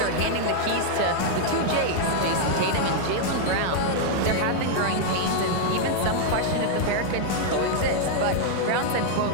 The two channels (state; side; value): different; both; correlation -0.01